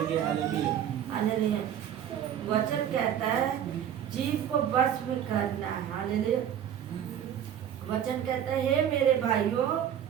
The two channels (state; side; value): quieter; left; 9.7 dB